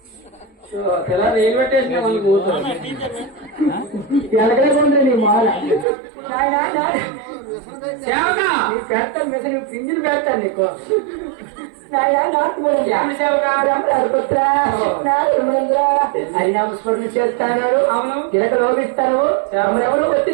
తెల్లారు ఏం పెట్టేసిన ఎలగలేకుండా నీ మాల నీ పెడతాను మెసేజ్ పింజిలు పెడతాను నీకు హరినామస్మరణ చేస్తాను అవును గిలక లోపిస్తాను ఎవరు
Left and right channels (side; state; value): left; drops out; at 5.9 s